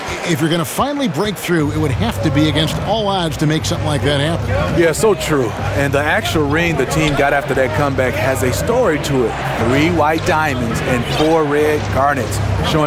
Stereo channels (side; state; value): both; identical; correlation 1.00